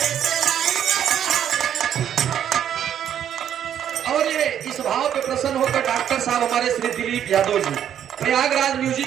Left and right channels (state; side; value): quieter; left; 9.7 dB